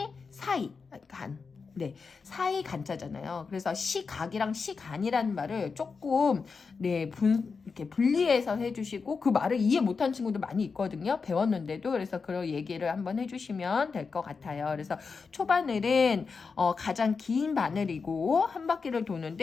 사이 간. 네, 사이 간자잖아요. 그래서 시각이랑 시간이라는 말을 조금 이렇게 분리해서 해주시고 그 말을 이해 못한 친구도 많이 있거든요. 배웠는데도. 그래서 그런 얘기를 한번 해주시면 될 것 같아요. 그래서 초바늘은 가장 긴 바늘이고 한 바퀴를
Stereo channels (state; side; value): quieter; right; 5.0 dB